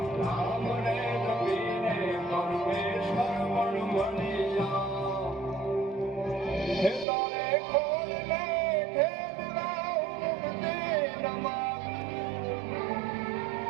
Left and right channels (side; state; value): left; drops out; at 7.1 s